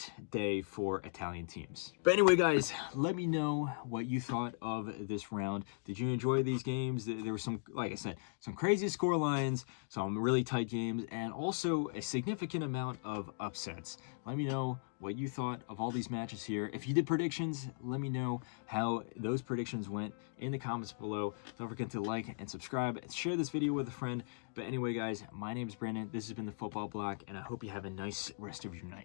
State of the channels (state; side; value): silent; right; digital silence